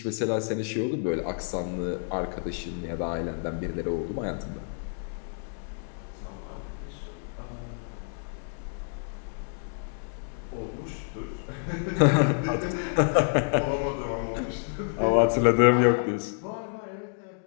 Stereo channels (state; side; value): silent; right; digital silence